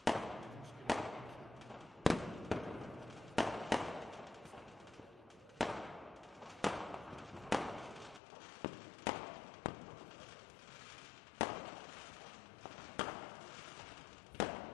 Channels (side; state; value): right; drops out; at 8.2 s